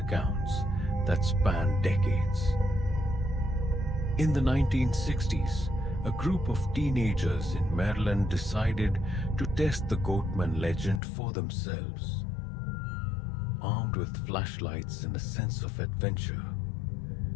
that span decades. In the 1960s, a group of teenagers in Maryland decided to test the Goatman legend for themselves. Armed with flashlights and a sense of adventure,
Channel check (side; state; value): right; drops out; at 11.0 s